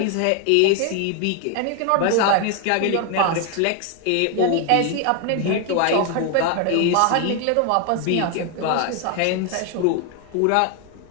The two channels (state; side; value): different; both; correlation 0.01